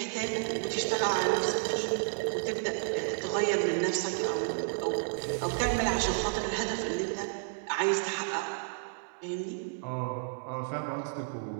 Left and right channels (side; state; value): left; silent; digital silence